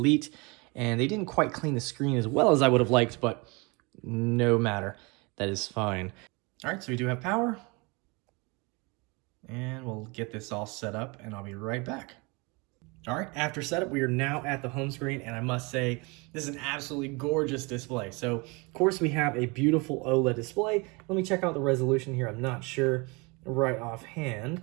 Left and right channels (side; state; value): left; quieter; 27.9 dB